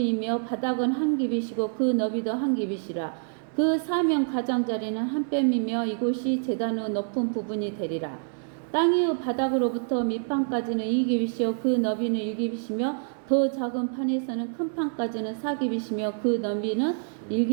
바닥은 한 규빗이고 그 너비도 한 규빗이라. 그 사명 가장자리는 한 뼘이며 이곳이 제단의 높은 부분이 되리라. 땅의 바닥으로부터 밑판까지는 2규빗이요 그 너비는 1규빗이며 더 작은 판에서는 큰 판까지는 4규빗이며 그 너비는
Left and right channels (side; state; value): left; silent; digital silence